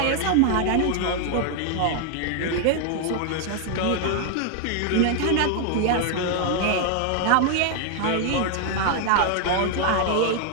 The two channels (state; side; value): different; both; correlation 0.00